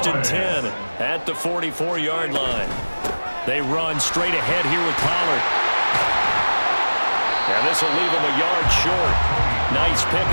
and 10 at the 44-yard line. They run straight ahead here with Pollard. And this will leave them a yard short. Nice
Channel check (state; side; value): inverted; both; correlation -1.00